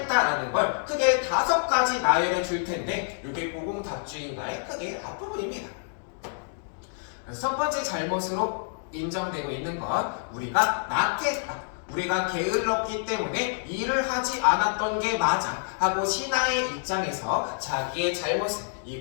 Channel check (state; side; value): silent; right; digital silence